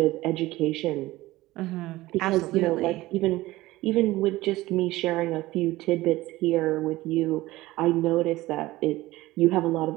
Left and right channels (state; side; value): quieter; left; 18.0 dB